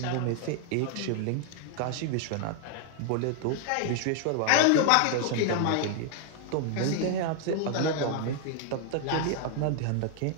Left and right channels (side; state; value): both; different; correlation 0.00